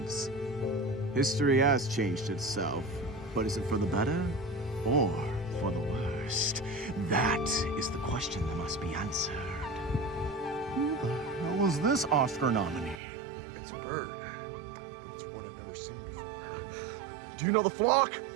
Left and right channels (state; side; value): drops out; left; at 13.0 s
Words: History has changed itself, but is it for the better or for the worst? That is the question that must be answered. Who the hell was this Oscar nominee? It's a bird. It's one I've never seen before. Do you know the flock?